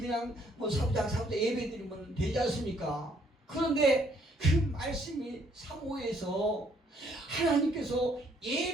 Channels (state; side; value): normal; both; correlation 0.67